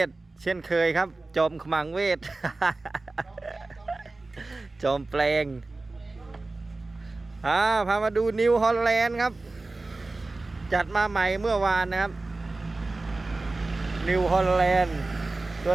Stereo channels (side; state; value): left; quieter; 3.3 dB